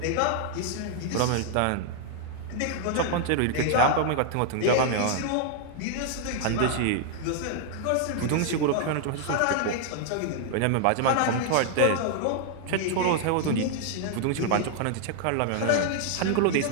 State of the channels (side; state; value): both; different; correlation 0.00